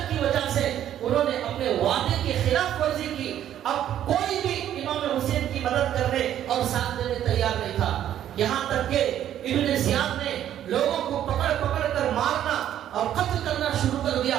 کی وجہ سے انہوں نے اپنے وعدے کی خلاف ورزی کی۔ اب کوئی بھی امام حسین کی مدد کرنے اور ساتھ دینے تیار نہیں تھا، یہاں تک کہ ابن زیاد نے لوگوں کو پکڑ کر مارنا اور قتل کرنا شروع کر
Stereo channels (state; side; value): quieter; left; 11.1 dB